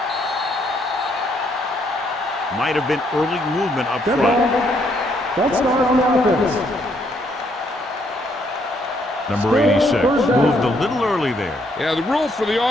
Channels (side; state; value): both; normal; correlation 0.71